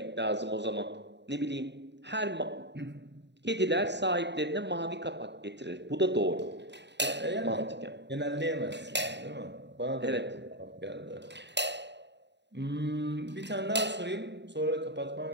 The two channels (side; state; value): left; late; 0.51 ms